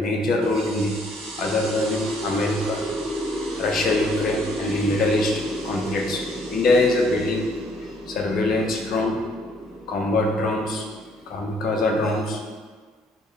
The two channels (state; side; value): normal; both; correlation 0.65